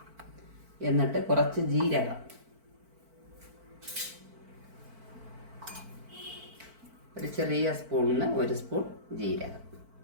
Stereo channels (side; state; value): left; late; 4.5 ms